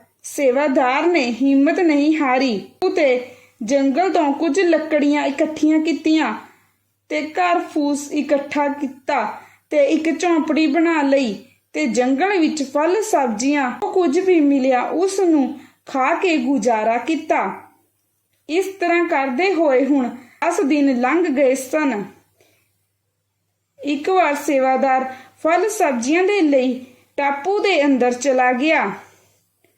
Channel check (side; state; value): both; identical; correlation 1.00